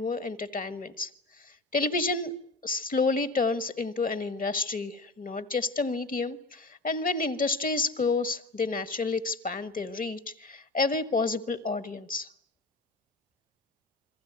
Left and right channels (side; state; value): right; quieter; 3.2 dB